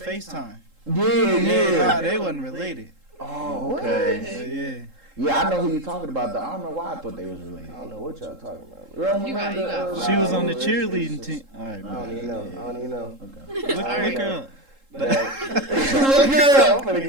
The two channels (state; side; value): late; left; 3.7 ms